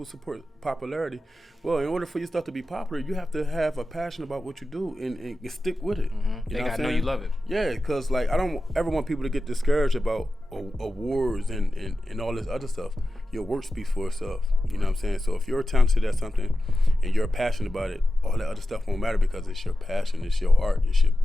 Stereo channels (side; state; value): both; normal; correlation 0.92